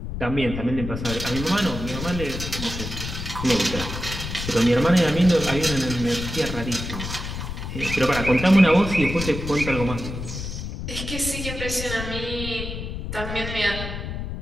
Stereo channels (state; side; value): noise; left; rumble, 6 dB below the sound